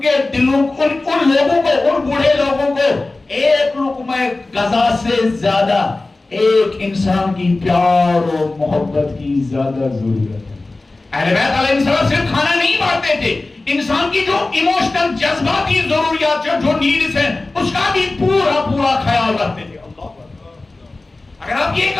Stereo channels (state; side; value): quieter; right; 3.2 dB